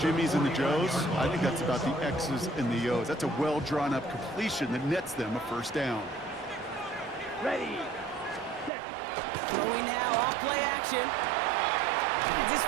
and the Joes. I think that's about the X's and the O's. That's a well-drawn-up completion that nets them a first down. Ready. Set. Throwing now, off play action. Finds his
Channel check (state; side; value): drops out; left; at 8.7 s